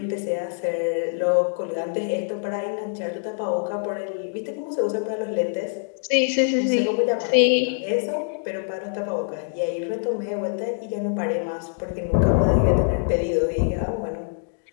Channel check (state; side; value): silent; right; digital silence